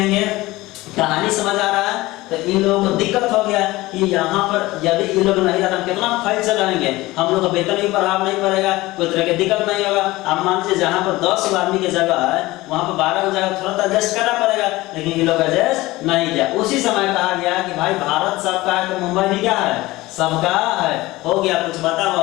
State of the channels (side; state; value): right; quieter; 19.2 dB